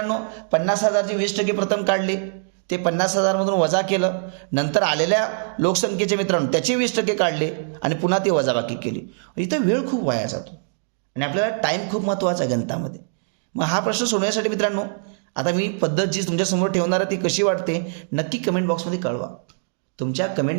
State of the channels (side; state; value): left; silent; digital silence